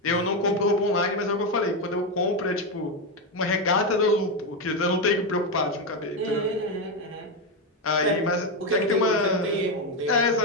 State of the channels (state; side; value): normal; both; correlation 0.09